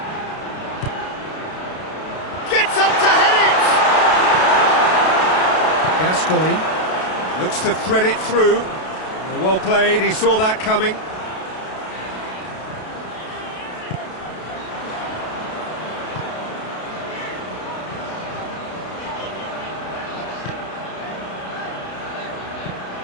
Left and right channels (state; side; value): late; right; 32 ms